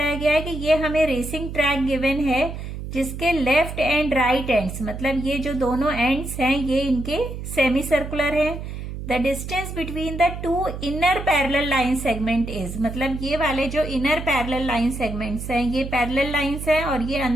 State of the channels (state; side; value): noise; right; hum, 8 dB below the sound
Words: गया है कि ये हमें racing track given है जिसके लेफ्ट एंड राइट एंड्स, मतलब ये जो दोनों एंड्स हैं ये इनके सेमी सर्कुलर हैं. The distance between the two inner parallel line segment is, मतलब ये वाले जो इनर पैरेलल लाइन सेगमेंट्स हैं ये पैरेलल लाइंस हैं और ये